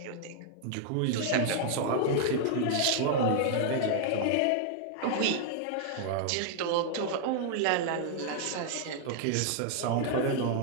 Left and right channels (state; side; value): different; both; correlation -0.01